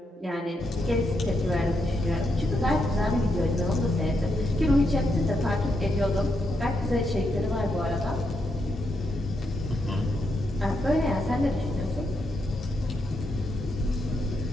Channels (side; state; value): both; normal; correlation 0.81